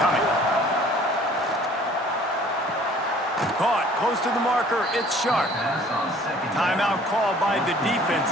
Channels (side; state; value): both; normal; correlation 0.53